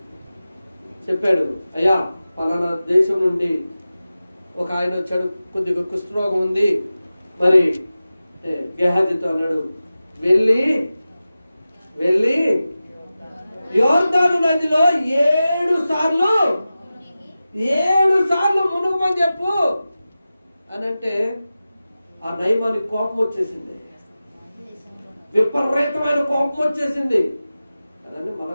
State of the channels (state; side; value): inverted; both; correlation -0.95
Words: చెప్పాడు, అయ్యా పలానా దేశం నుండి ఒక ఆయన వచ్చాడు, కొద్దిగా కుష్ఠరోగం ఉంది. మరి గేహాజీతో అన్నాడు, వెళ్ళి యోర్దాను నదిలో 7 సార్లు మునుగమని చెప్పు అని అంటే ఆ నయమానికి కోపం వచ్చేసింది, విపరీతమైన కోపం వచ్చేసింది. అదండి